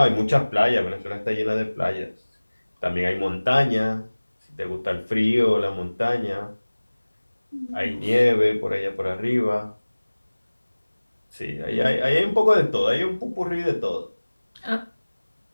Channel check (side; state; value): both; inverted; correlation -1.00